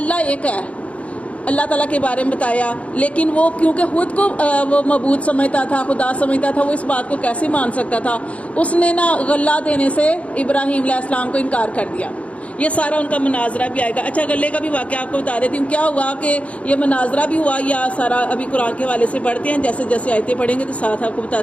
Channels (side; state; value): right; late; 0.064 ms